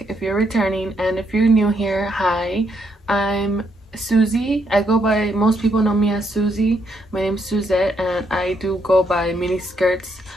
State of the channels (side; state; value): both; normal; correlation 0.75